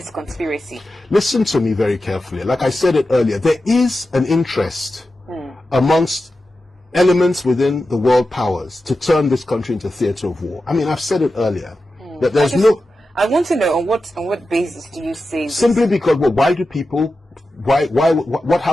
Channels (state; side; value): normal; both; correlation 0.92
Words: conspiracy. Listen to me very carefully. Like I said it earlier, there is an interest amongst elements within the world powers to turn this country into a theater of war. I mean, I've said it earlier that there's I want to know on what basis do you say this? Simply because, well, why do people? What